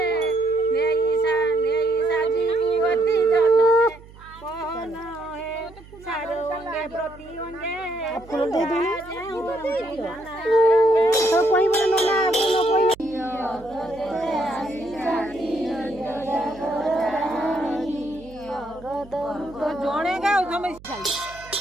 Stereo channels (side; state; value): right; noise; hum, 21 dB below the sound